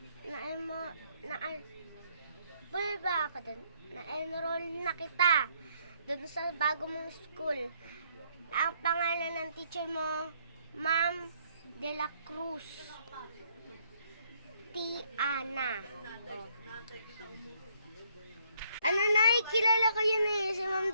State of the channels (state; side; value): inverted; both; correlation -0.68